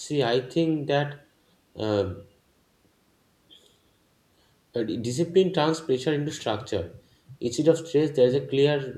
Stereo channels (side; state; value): both; identical; correlation 1.00